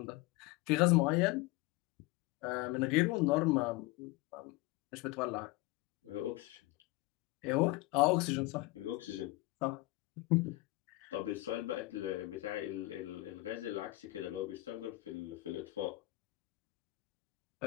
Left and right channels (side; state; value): right; quieter; 20.2 dB